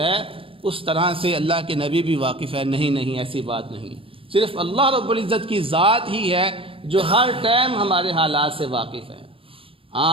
اس طرح سے اللہ کے نبی بھی واقف ہے۔ نہیں، ایسی بات نہیں، صرف اللہ رب العزت کی ذات ہی ہے جو ہر ٹائم ہمارے حالات سے واقف ہے۔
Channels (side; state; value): left; late; 0.26 ms